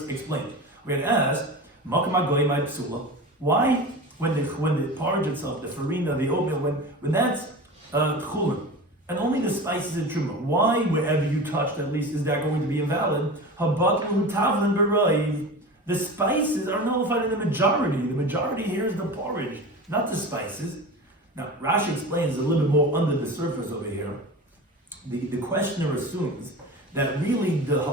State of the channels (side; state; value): both; normal; correlation 0.31